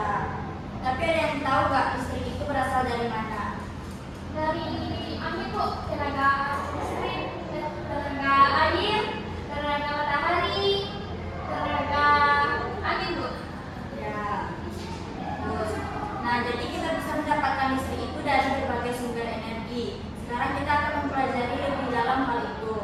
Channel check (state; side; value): identical; both; correlation 1.00